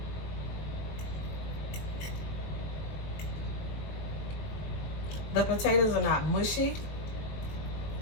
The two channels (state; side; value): late; right; 20 ms